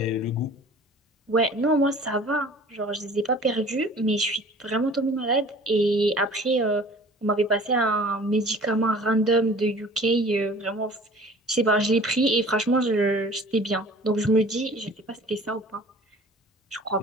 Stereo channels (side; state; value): both; normal; correlation 0.47